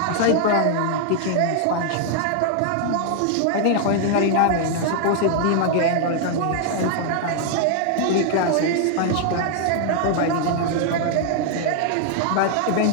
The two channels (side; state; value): both; different; correlation 0.00